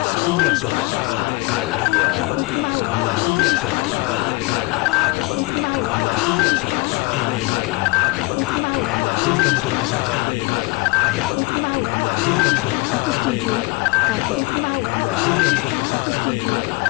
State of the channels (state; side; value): quieter; right; 24.8 dB